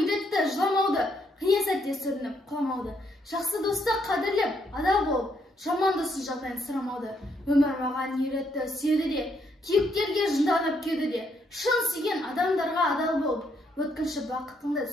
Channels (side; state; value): both; normal; correlation 0.74